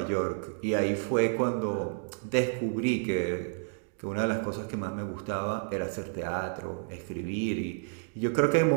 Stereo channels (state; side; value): silent; left; 58 dB below the other